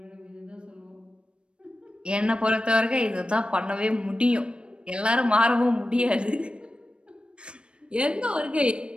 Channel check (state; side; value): late; left; 0.056 ms